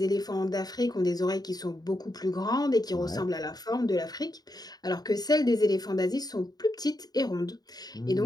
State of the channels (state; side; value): late; right; 0.19 ms